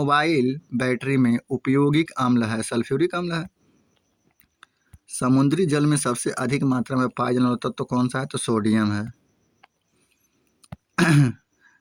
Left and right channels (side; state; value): both; identical; correlation 1.00